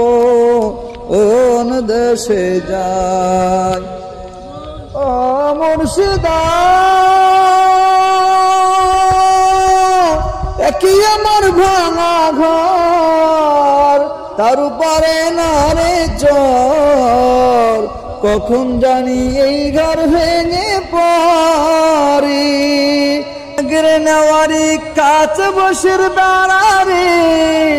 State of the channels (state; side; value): identical; both; correlation 1.00